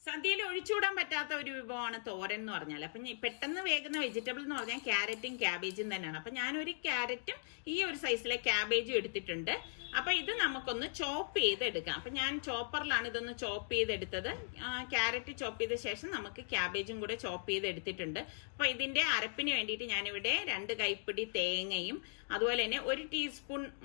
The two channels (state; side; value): silent; right; digital silence